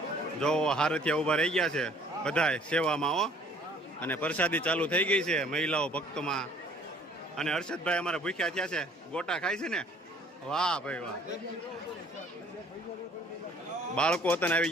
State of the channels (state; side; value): normal; both; correlation 0.56